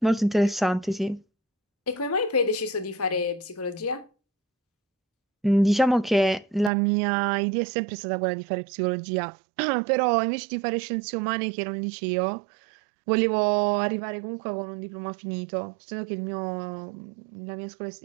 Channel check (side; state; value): left; drops out; at 6.7 s